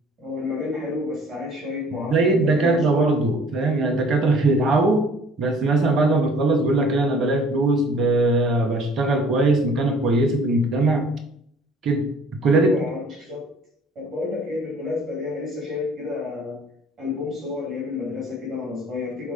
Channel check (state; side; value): normal; both; correlation 0.53